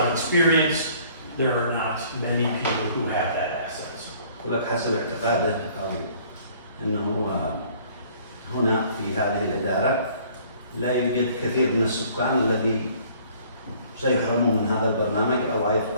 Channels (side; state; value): both; inverted; correlation -0.56